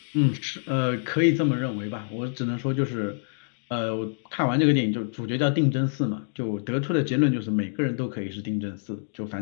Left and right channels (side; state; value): right; silent; digital silence